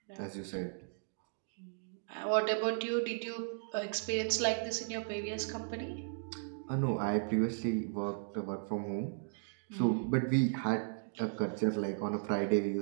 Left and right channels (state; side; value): silent; left; digital silence